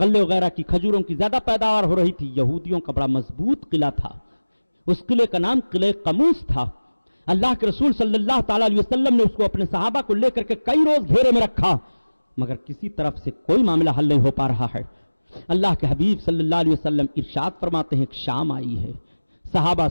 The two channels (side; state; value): both; inverted; correlation -1.00